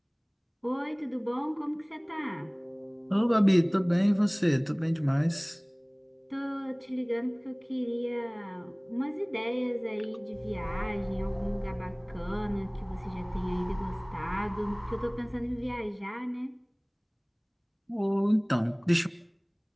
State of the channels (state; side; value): identical; both; correlation 1.00